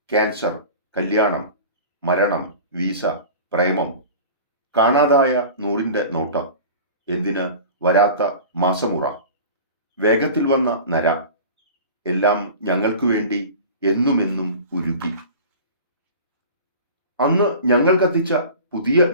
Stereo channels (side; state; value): both; inverted; correlation -0.38